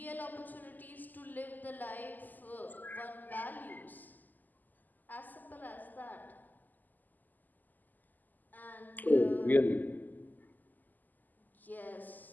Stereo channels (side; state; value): right; late; 0.085 ms